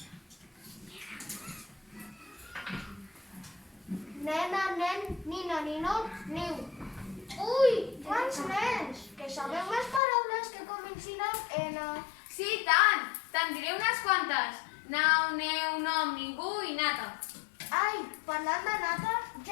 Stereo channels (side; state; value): right; drops out; at 10.0 s